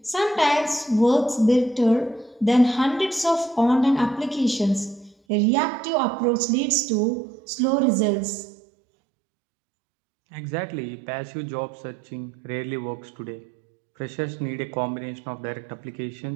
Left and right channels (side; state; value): left; drops out; at 5.2 s